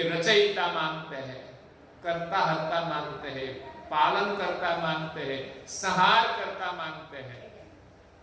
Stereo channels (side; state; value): both; identical; correlation 1.00